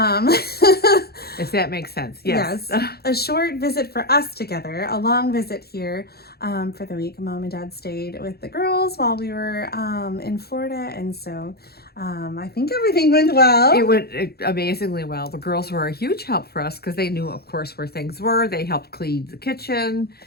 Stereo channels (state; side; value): late; right; 0.46 ms